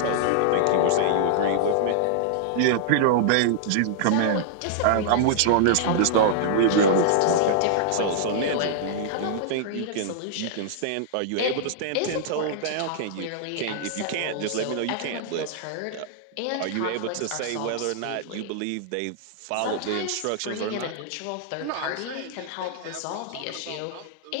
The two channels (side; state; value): both; different; correlation -0.01